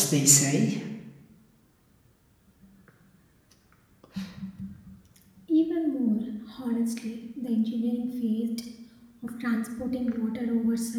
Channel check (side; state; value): both; identical; correlation 1.00